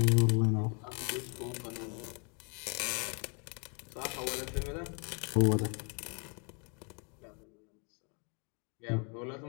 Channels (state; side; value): quieter; right; 36.4 dB